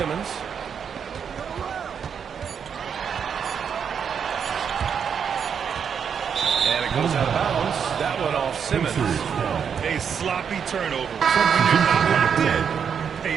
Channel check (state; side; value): quieter; left; 7.2 dB